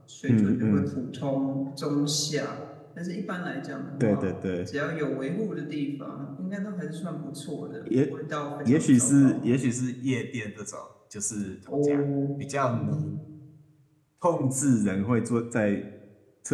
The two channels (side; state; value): both; identical; correlation 1.00